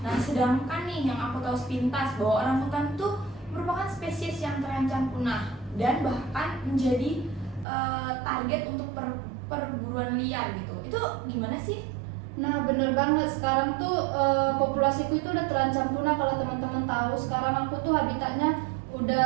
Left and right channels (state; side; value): drops out; left; at 7.7 s